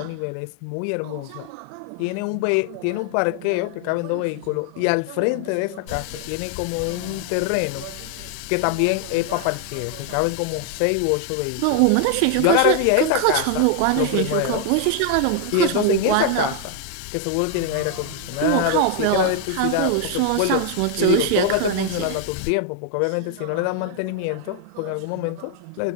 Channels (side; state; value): both; different; correlation 0.00